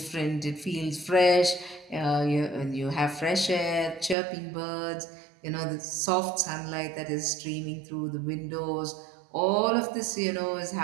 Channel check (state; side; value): drops out; left; at 4.2 s